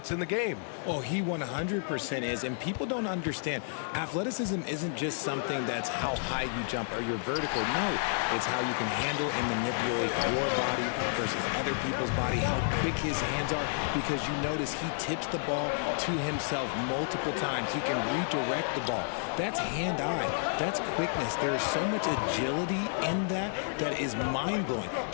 in the game. Oh, he 100% is, and people don't understand. Athleticism isn't just something that's how high you jump or you're vertical. No, it's how you can handle and manipulate your body versus other people's body, how quick his hands are, because you notice he tips the ball to himself multiple times. He can redirect the ball. That's hand-eye. That's quickness. There is so much agility in that is mind-blowing.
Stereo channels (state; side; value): silent; right; digital silence